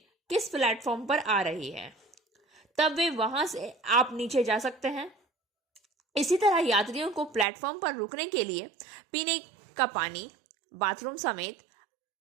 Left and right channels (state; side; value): drops out; left; at 7.5 s